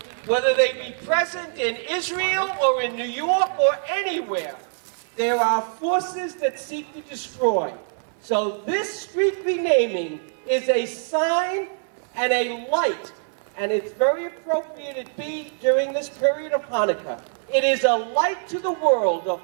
whether they be present in Israel or in New York or anywhere. There are forces that seek to destroy. So this street renaming is a sign and a light, and it's very appropriate it be during this period of Hanukkah. It is a light to the world of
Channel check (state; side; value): silent; left; 58 dB below the other